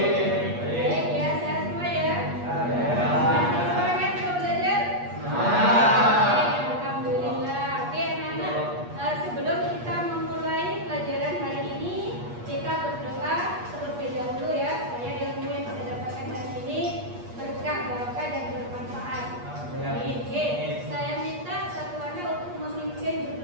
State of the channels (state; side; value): late; left; 8.4 ms